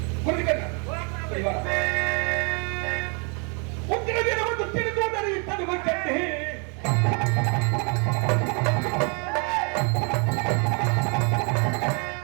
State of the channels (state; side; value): quieter; left; 35.5 dB